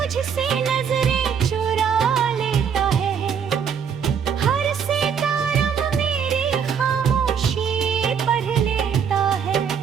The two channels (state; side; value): quieter; left; 7.3 dB